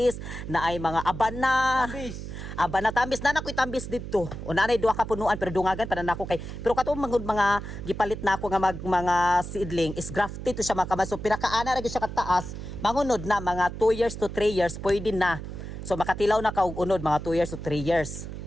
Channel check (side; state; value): right; noise; hum, 9 dB below the sound